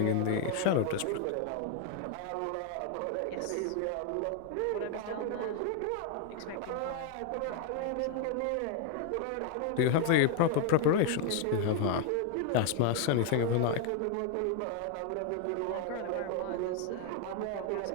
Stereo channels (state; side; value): different; both; correlation 0.00